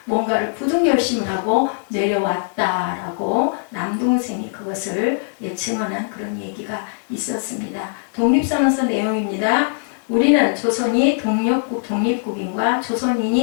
뭔가를 굳은 결심을 하고 내려왔다라고 남동생이 그것을 증언한 그런 얘기가 있었습니다. 독립선언서 내용입니다. 우리는 조선이 독립국인과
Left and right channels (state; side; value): silent; right; digital silence